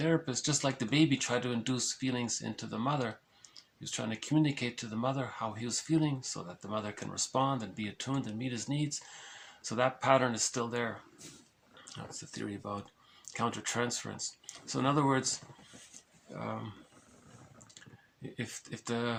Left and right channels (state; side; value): identical; both; correlation 1.00